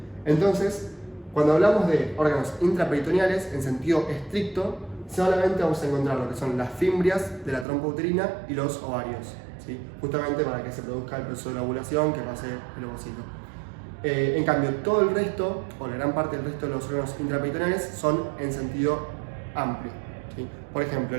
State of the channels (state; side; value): drops out; left; at 7.7 s